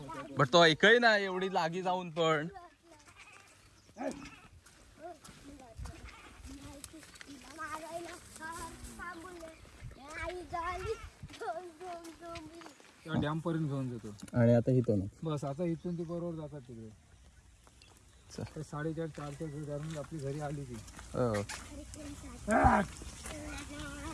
बट तो ऐकही ना एवढी लागी जाऊन पण. डॅम पर्यंत घेऊन जातो. आणि आता इथून बस आता इथून ती बरोबर जातात तिकडे. 4:30 धरून आपली घरी आली ती.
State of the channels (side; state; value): both; identical; correlation 1.00